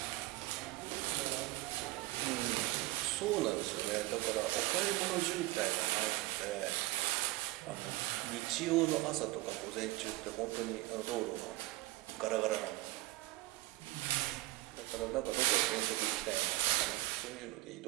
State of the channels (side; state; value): left; quieter; 19.0 dB